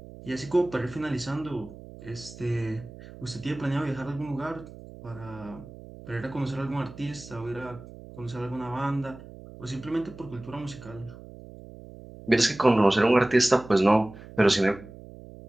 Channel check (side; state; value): right; noise; hum, 17 dB below the sound